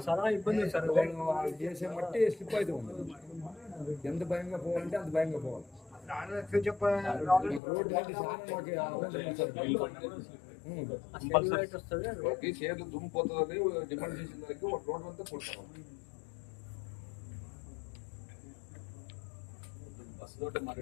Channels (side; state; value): right; drops out; at 7.6 s